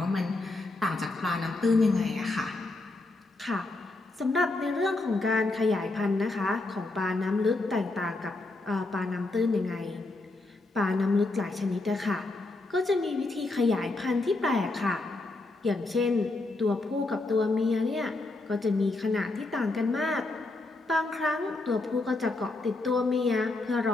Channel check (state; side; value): quieter; right; 3.1 dB